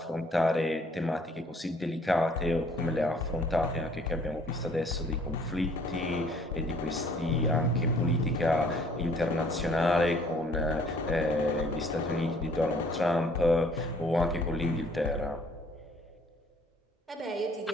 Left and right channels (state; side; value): normal; both; correlation 0.59